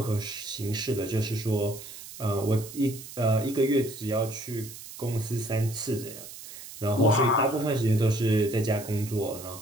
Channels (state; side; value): noise; right; hiss, 14 dB below the sound